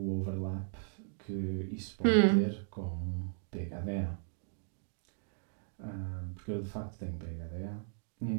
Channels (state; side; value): silent; left; digital silence